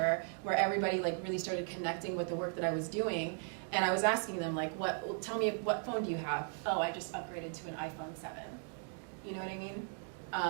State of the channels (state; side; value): silent; left; 53 dB below the other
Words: where everybody like really started connecting with the work that I was doing, and I was asking them like, tell me what phone do you have? Oh, I just upgraded to an iPhone 7. You know what I mean?